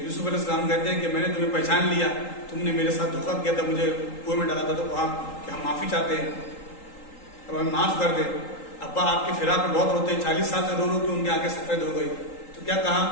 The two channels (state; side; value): late; right; 3.8 ms